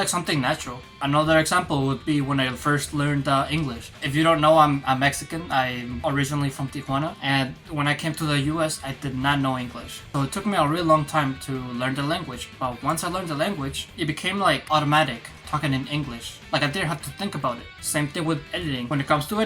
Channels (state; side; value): identical; both; correlation 1.00